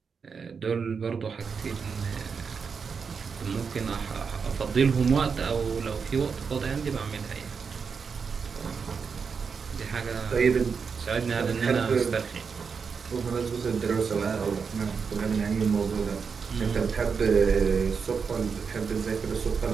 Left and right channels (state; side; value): quieter; left; 5.8 dB